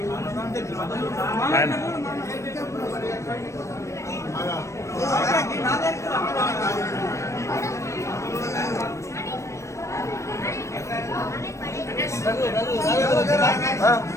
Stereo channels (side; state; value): right; late; 0.15 ms